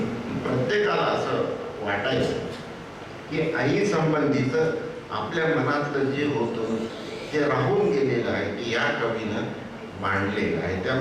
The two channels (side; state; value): both; identical; correlation 1.00